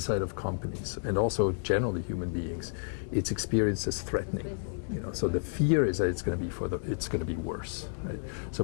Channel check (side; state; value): right; silent; digital silence